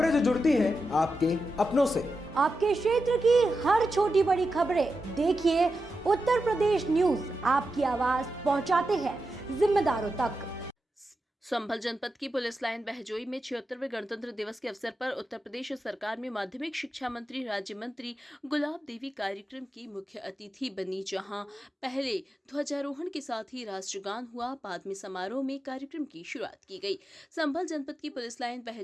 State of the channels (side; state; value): both; normal; correlation 0.90